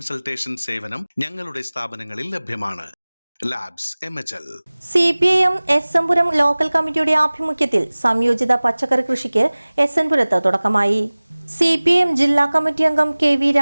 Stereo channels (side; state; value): both; inverted; correlation -1.00